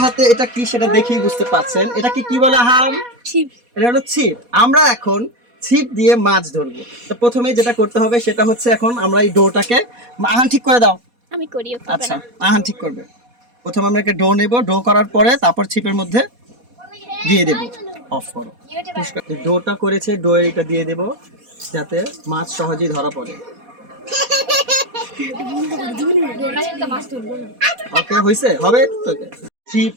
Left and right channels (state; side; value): late; left; 4.2 ms